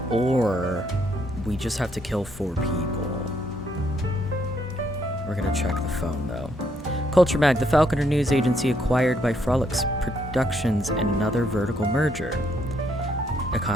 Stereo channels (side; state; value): both; normal; correlation 0.72